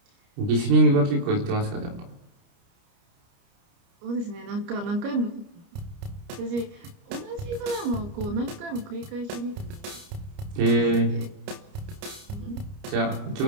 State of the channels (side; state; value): left; late; 29 ms